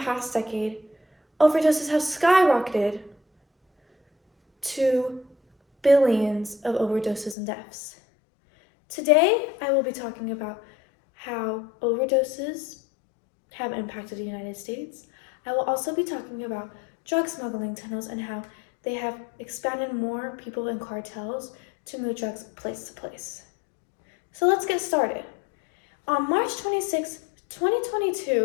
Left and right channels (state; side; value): drops out; right; at 7.4 s